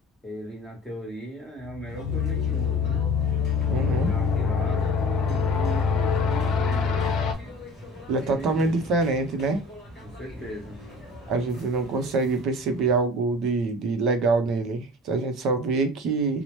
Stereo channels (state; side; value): normal; both; correlation 0.40